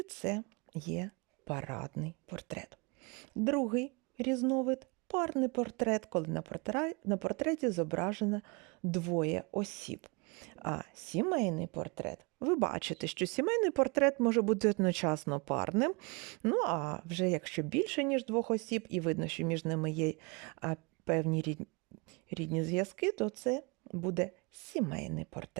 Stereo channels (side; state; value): left; quieter; 29.7 dB